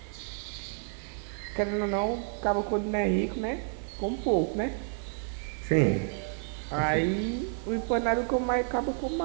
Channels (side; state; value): left; silent; 58 dB below the other